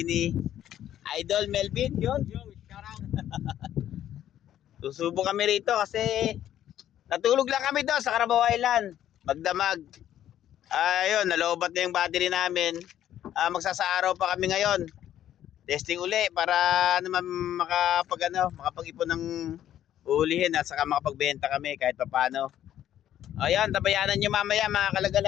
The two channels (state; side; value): quieter; right; 11.4 dB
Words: ni Idol Melvin, yun. Susubo kami rito kasi natulog lang kami doon sa Carabao Island. Magdamag. Ayun, nalobat na yung battery namin. Magsasaaraw pa kami ngayon. Testing uli para naman makapag-ipon ng ulihin at saka makapagbenta kami kahit papaano. Ayun, tabayanan nyo mamaya mga